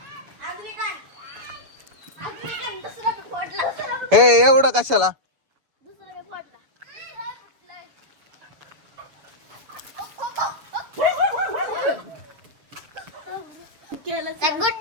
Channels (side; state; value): left; late; 7.1 ms